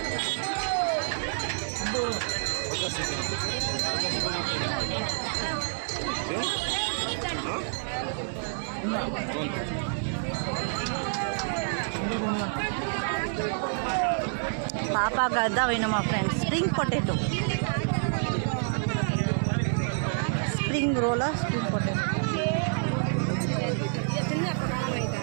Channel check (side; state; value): left; silent; digital silence